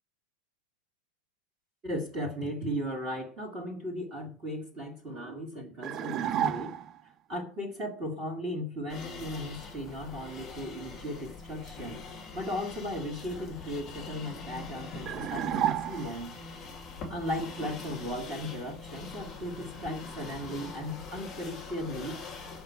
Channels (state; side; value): normal; both; correlation 0.35